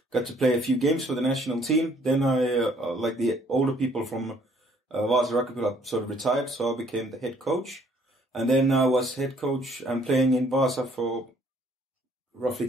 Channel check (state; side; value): normal; both; correlation 0.62